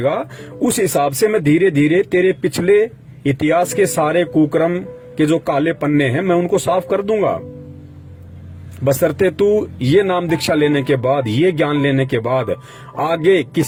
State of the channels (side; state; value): both; identical; correlation 1.00